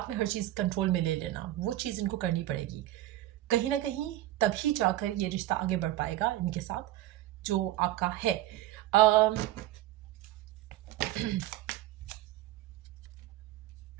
में हर चीज़ कंट्रोल में ले लेना, वो चीज़ इनको करनी पड़ेगी कहीं ना कहीं, तभी जाकर ये रिश्ता आगे बढ़ पाएगा इनके साथ जो आपका है।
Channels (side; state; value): left; quieter; 14.9 dB